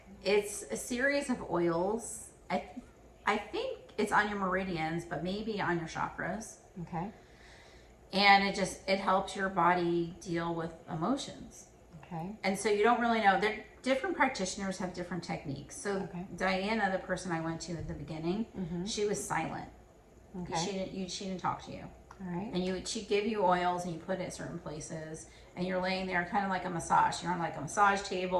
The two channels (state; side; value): identical; both; correlation 1.00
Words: It's a series of oils. I think it's on your meridians, but maybe on your chakras. Okay. And it helps your body deal with emotions. Okay. And so you don't really know. Different practitioners have different techniques. So Diana, the person I went to at the beginning, she was silent. Okay. She didn't talk to you. All right. And she'd give you oils and you put it at certain places, and you're laying there kind of like a massage. You're on like a massage